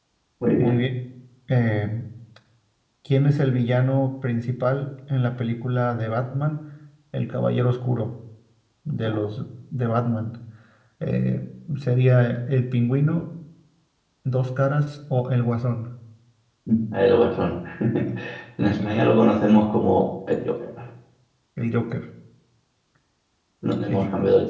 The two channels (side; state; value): both; identical; correlation 1.00